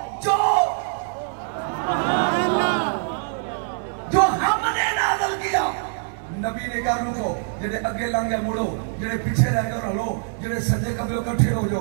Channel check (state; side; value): silent; left; digital silence